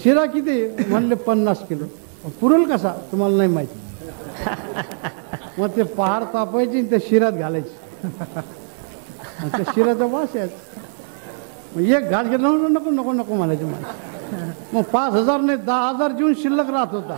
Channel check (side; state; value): left; silent; digital silence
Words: शिरा किती म्हणले 50 किलो. पुरेल कसा तुम्हाला नाही माहिती. मग ते पहार तापायची आणि त्या शिरात घालायची. त्या शिराचा वास याच. मग एक घास घेतला नको नको नको म्हणायचे माणसं. मग 5,000 नाही 10,000 जीवन शिल्लक राहत होता.